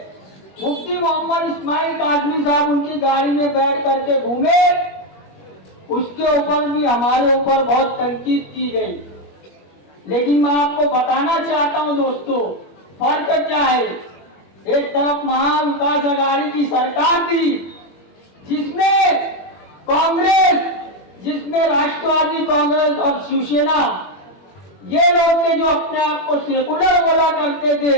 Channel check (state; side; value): late; right; 21 ms